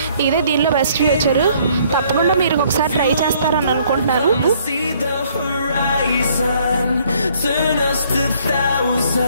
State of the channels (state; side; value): inverted; both; correlation -0.63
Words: ఇదే దీనిలో బెస్ట్ ఫీచర్. తప్పకుండా మీరు ఒకసారి ట్రై చేస్తారని అనుకుంటున్నాను.